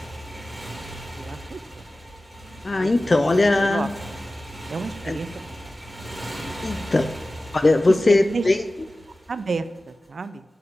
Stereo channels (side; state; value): both; normal; correlation 0.96